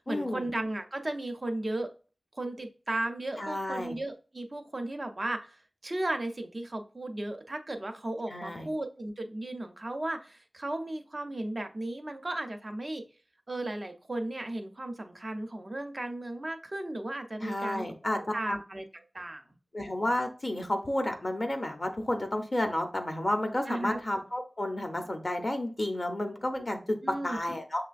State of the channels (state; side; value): normal; both; correlation 0.96